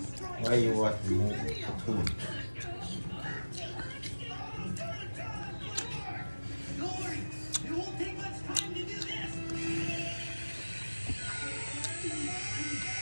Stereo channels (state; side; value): inverted; both; correlation -1.00